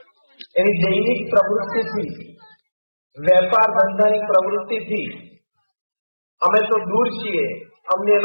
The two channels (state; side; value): inverted; both; correlation -1.00